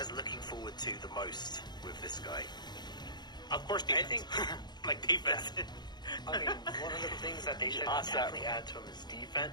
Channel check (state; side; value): late; right; 0.21 ms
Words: looking forward to the most with this guy? Of course, defense. I think, like defense. I mean, one of the things that they should definitely add to him is